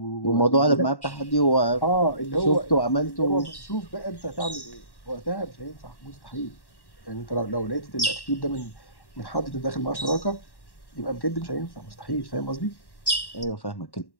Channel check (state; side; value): late; right; 1.1 ms